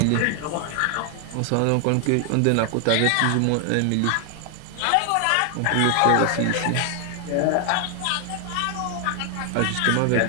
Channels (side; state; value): both; different; correlation 0.00